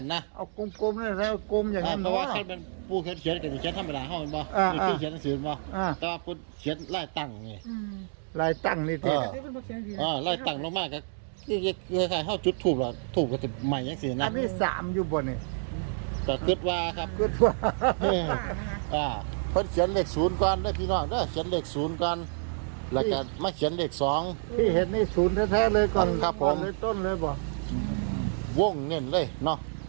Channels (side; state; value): left; silent; digital silence